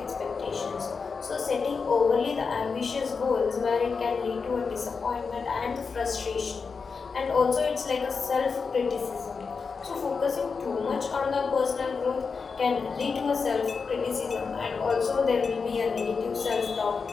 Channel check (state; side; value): quieter; right; 5.1 dB